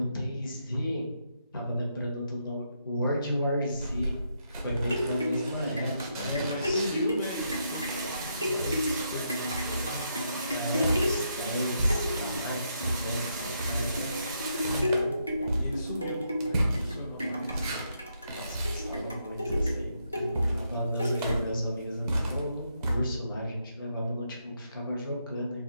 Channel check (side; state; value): both; inverted; correlation -0.79